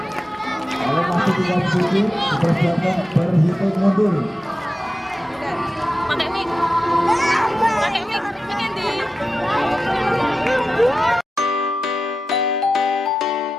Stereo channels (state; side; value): normal; both; correlation 0.93